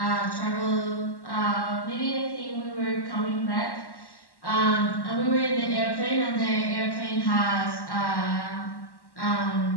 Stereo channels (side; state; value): right; late; 1.1 ms